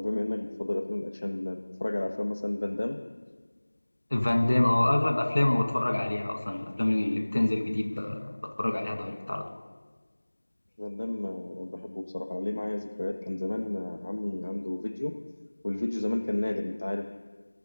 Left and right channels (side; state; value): both; inverted; correlation -1.00